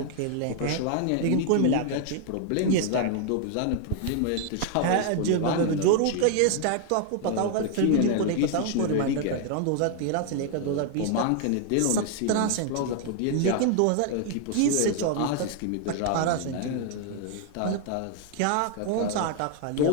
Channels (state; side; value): different; both; correlation 0.00